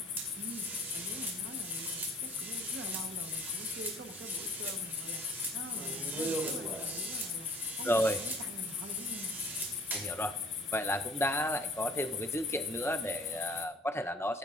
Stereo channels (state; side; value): normal; both; correlation 0.54